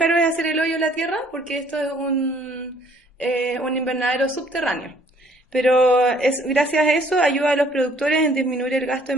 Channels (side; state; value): both; normal; correlation 0.60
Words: es hacer el hoyo en la tierra, porque esto es un invernadero subterráneo. Pero gracias a eso ayuda a los productores en disminuir el gasto